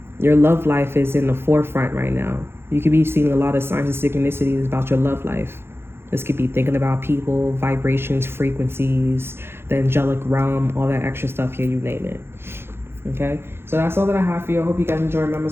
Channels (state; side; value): late; left; 0.11 ms